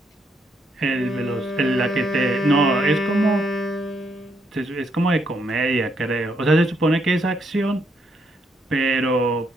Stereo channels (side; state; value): both; normal; correlation 0.75